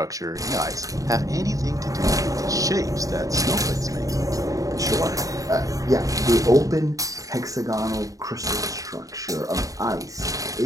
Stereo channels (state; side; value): late; left; 0.16 ms